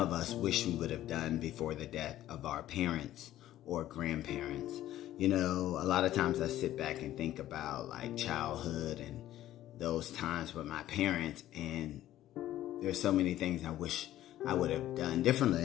us wish we would have done before the death of our parents or grandparents. You know, a lot of times I sit back and think about like childhood and those times with my parents, and there's so many things I wish I would have done differently.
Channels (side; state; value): right; quieter; 13.5 dB